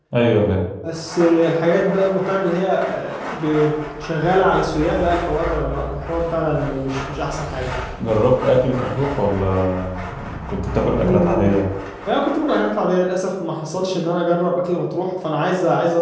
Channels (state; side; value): identical; both; correlation 1.00